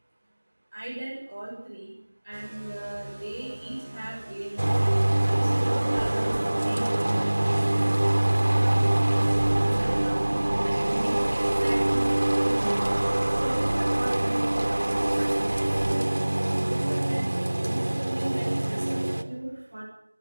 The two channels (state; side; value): inverted; both; correlation -1.00